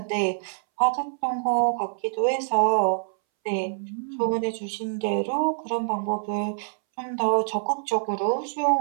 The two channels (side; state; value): left; silent; 61 dB below the other